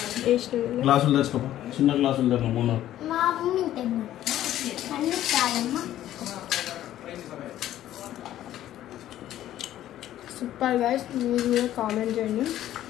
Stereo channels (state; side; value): quieter; right; 12.8 dB